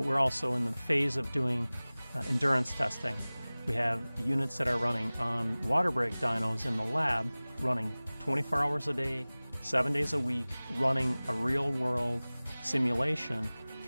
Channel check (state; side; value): inverted; both; correlation -0.99